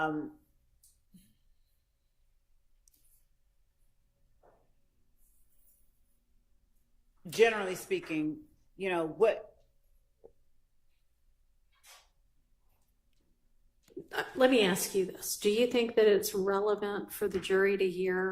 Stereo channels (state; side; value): identical; both; correlation 1.00